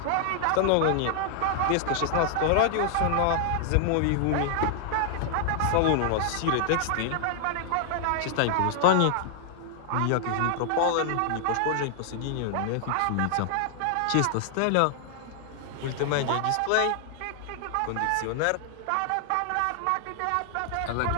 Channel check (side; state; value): both; different; correlation 0.00